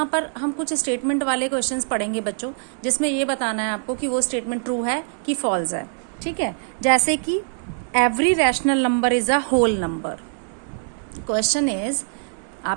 पर हम कुछ स्टेटमेंट वाले क्वेश्चंस पढ़ेंगे बच्चों, जिसमें ये बताना है आपको कि वो स्टेटमेंट ट्रू है कि फॉल्स है. ठीक है, जैसे कि every rational number is a whole number. Question is,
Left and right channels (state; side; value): silent; left; 63 dB below the other